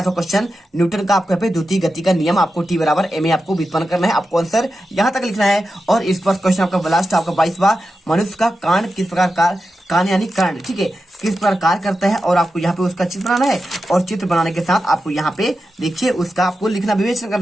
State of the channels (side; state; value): both; normal; correlation 0.90